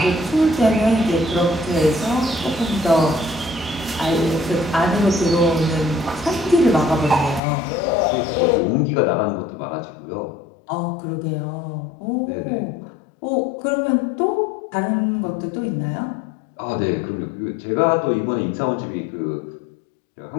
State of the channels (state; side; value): drops out; right; at 7.4 s